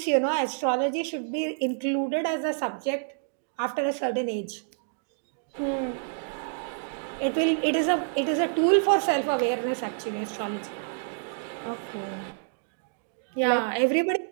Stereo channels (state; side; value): silent; left; digital silence